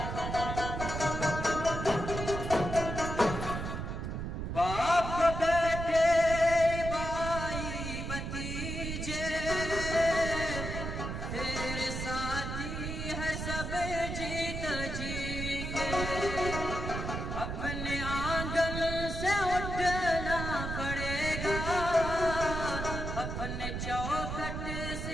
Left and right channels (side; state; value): right; noise; rumble, 4 dB below the sound